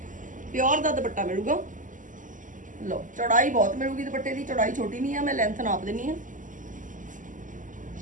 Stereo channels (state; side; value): late; left; 0.38 ms